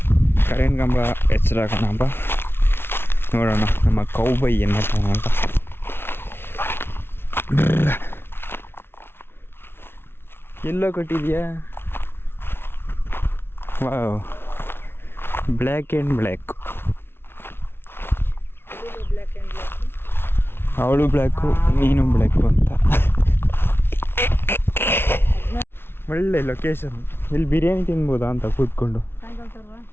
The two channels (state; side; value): late; right; 0.11 ms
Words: ಕರೆಂಟ್ ಕಂಬ ಎಚ್ಚರಾಕೋಣ ನೋಡೋಣ ನಮ್ಮ ಕೌಬೈ ಏನು ಮಾಡ್ತಾನ ಅಂತ. ಎಲ್ಲೋ ಕಟ್ಟಿದ್ಯಾ? Wow, black and black. ಅವಳು ಬ್ಲ್ಯಾಕು, ನೀನು ಬ್ಲ್ಯಾಕು ಅಂತ. ಒಳ್ಳೆ ಲೊಕೇಶನ್. ಇಲ್ಲಿ ಬಿರಿಯಾನಿ ತಿನ್ಬೋದಾ ಅಂತ ಕೂತ್ಕೊಂಡು.